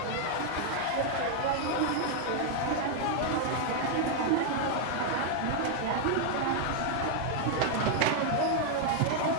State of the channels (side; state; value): both; different; correlation 0.00